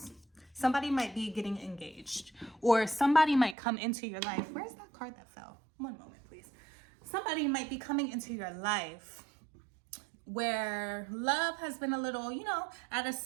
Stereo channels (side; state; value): left; drops out; at 3.6 s